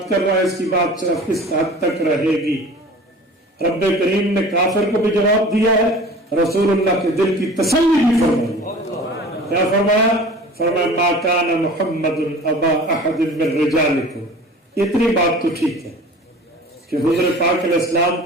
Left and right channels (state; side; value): normal; both; correlation 0.42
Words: کر رہا ہے اس کی بات صرف کس حد تک رہے گی۔ رب کریم نے کافر کو بھی جواب دیا ہے، رسول اللہ کے دل کی تسلی بھی فرمائی۔ کیا فرمایا؟ فرمایا ما کان محمد ابا احد من رجالکم۔ اتنی بات تو ٹھیک ہے کہ حضور پاک علیہ السلام